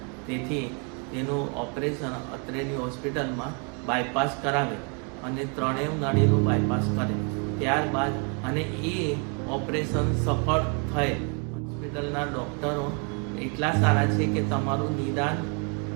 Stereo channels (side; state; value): left; quieter; 37.0 dB